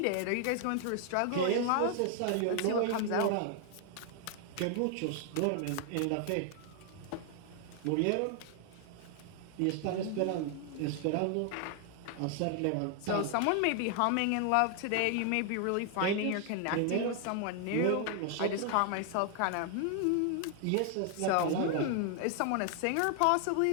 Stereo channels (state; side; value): different; both; correlation 0.00